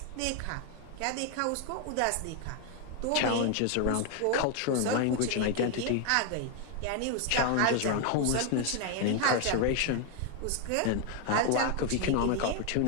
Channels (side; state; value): both; different; correlation 0.01